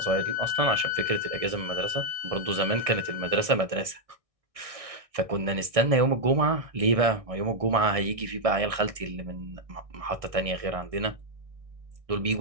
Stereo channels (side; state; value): left; late; 1.6 ms